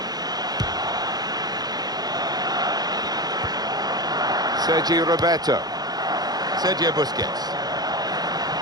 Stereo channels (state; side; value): late; left; 0.19 ms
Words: Sergio Roberto. Sergio Busquets.